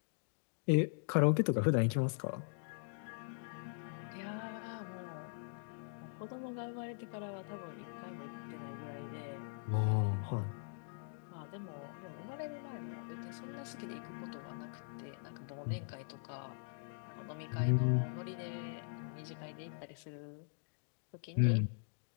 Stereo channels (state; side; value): silent; right; digital silence